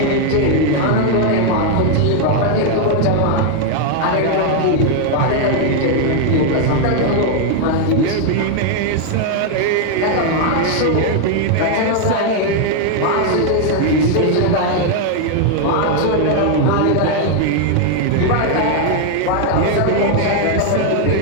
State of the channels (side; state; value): both; different; correlation 0.00